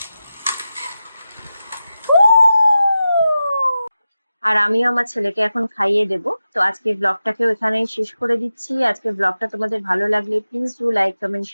আর আমিও আমার ছেলেকে এখন খাইয়ে দেব। তো আজকের ব্লগটাকেও এখানেই শেষ করে দিচ্ছি। আজকের ব্লগটা তোমাদের ভালো লাগলে please do like, comment,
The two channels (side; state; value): both; inverted; correlation -0.92